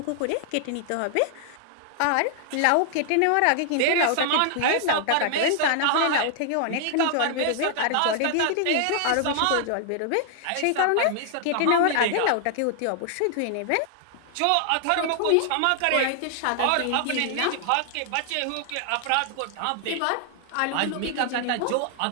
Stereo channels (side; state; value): both; different; correlation 0.00